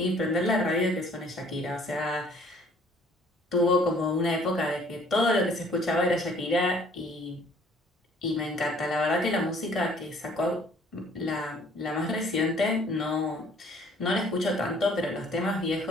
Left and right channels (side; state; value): both; normal; correlation 0.58